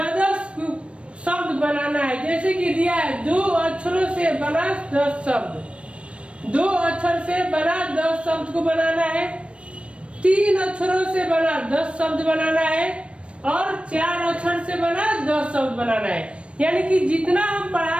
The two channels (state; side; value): late; left; 0.060 ms